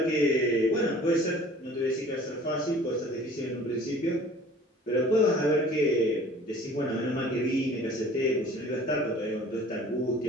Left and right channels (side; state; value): both; normal; correlation 0.48